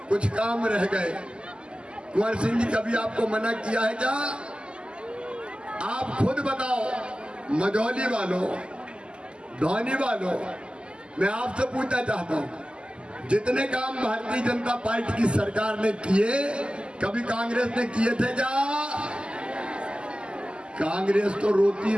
कुछ काम रह गए। कुंवर सिंह जी कभी आपको मना किया है क्या? आप खुद बताओ, मझौली वालों, धौनी वालों, मैं आपसे पूछना चाहता हूं, जितने काम भारतीय जनता पार्टी की सरकार ने किए, कभी कांग्रेस ने किए थे क्या? कांग्रेस तो रोती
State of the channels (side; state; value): left; late; 0.050 ms